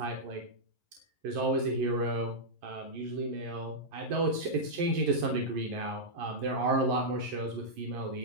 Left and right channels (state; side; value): late; left; 11 ms